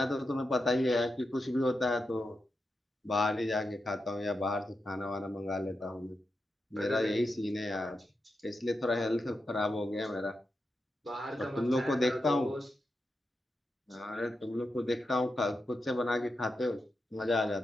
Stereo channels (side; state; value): both; normal; correlation 0.88